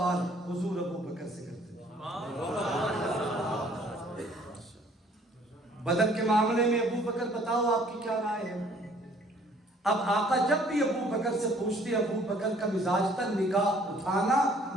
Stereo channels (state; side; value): normal; both; correlation 0.58